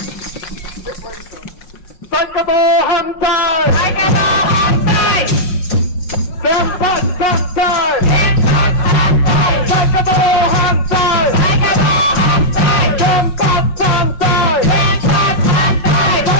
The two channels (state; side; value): late; right; 5.5 ms